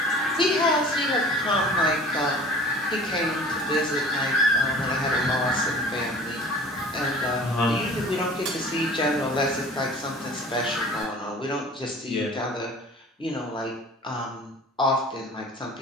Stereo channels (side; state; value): both; normal; correlation 0.45